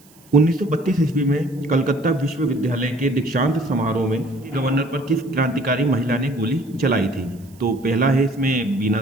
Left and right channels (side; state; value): right; noise; hiss, 28 dB below the sound